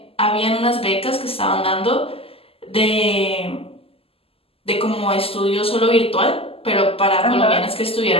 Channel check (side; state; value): right; late; 0.28 ms